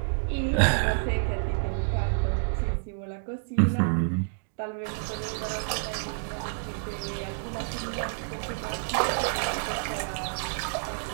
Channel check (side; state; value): left; silent; digital silence